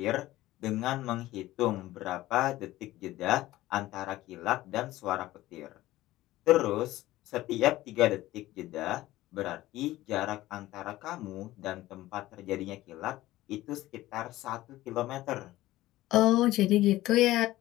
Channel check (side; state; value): right; quieter; 16.4 dB